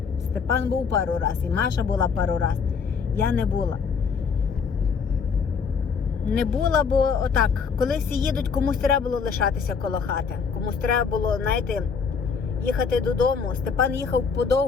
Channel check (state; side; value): quieter; right; 5.8 dB